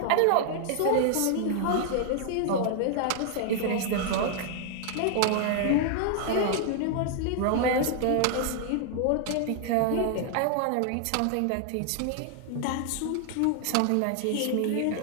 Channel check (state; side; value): different; both; correlation 0.00